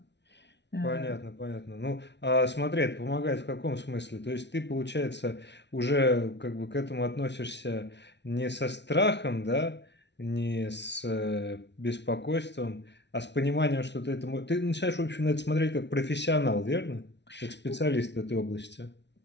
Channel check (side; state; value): right; late; 0.51 ms